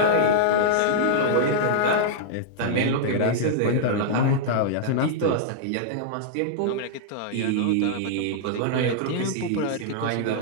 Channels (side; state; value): both; different; correlation -0.02